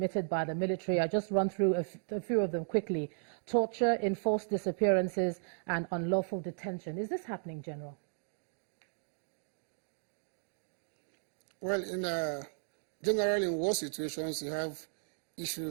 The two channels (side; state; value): left; silent; digital silence